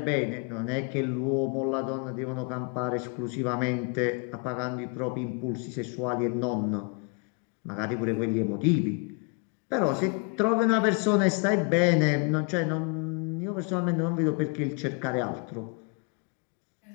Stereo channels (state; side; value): quieter; right; 34.7 dB